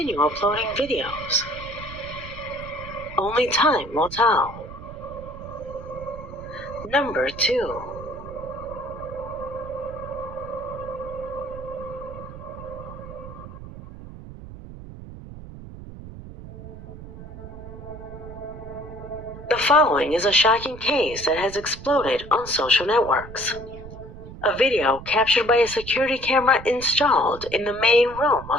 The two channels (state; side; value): noise; right; rumble, 13 dB below the sound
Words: uploading videos? Only time will tell. Number 2. The following is a shocking case that has exploded on social networks. A video captured by a security camera installed in the main room